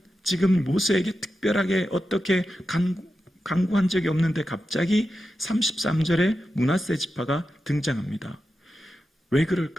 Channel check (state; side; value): normal; both; correlation 0.90